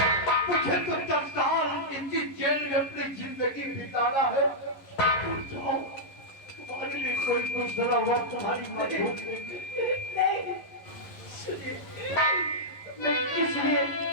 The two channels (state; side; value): late; right; 11 ms